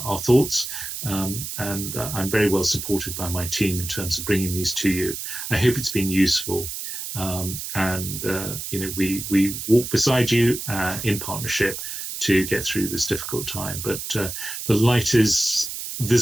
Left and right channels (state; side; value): noise; right; hiss, 6 dB below the sound